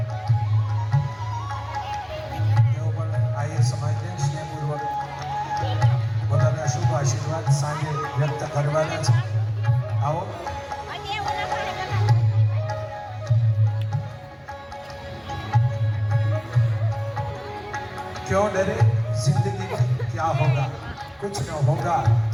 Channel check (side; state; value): both; identical; correlation 1.00